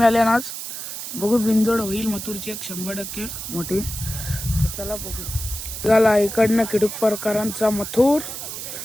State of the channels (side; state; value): right; noise; hiss, 7 dB below the sound